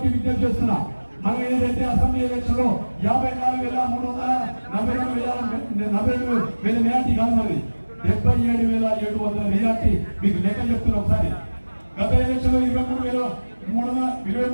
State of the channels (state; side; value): inverted; both; correlation -1.00